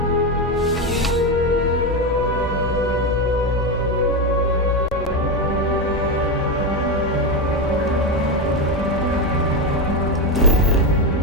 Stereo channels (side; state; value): both; normal; correlation 0.11